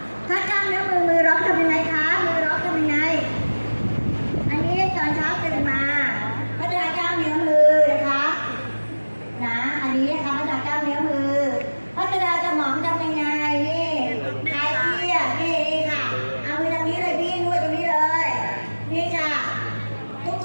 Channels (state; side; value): inverted; both; correlation -1.00